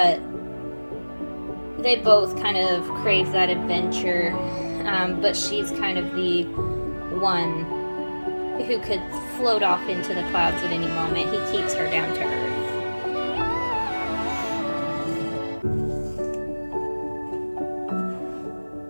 they both kind of crave that adventure. But she's kind of the one who could float off into the clouds at any moment. He keeps her down to earth.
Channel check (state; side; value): inverted; both; correlation -1.00